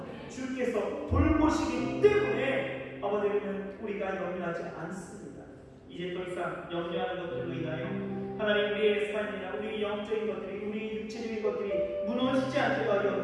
주께서 돌보시기 때문에 아버지는 우리가 염려하지 않습니다. 이제 더 이상 염려하는 것들로 인하여 하나님 우리의 삶이나 우리 영적인 것들이, 우리 육체적인 것들이 무너지지 않게 하여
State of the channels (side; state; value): both; identical; correlation 1.00